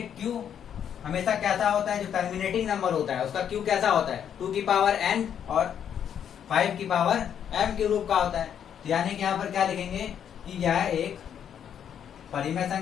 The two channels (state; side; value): quieter; right; 8.9 dB